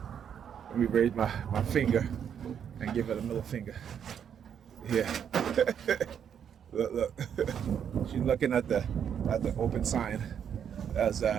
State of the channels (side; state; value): left; quieter; 8.3 dB